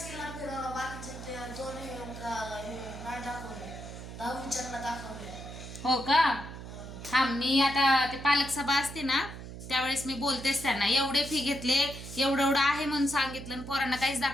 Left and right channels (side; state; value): right; noise; hum, 11 dB below the sound